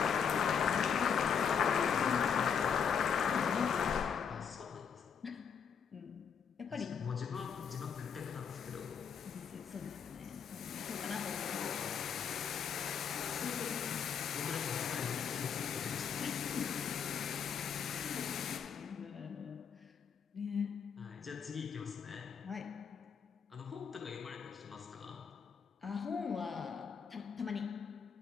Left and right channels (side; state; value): right; quieter; 7.0 dB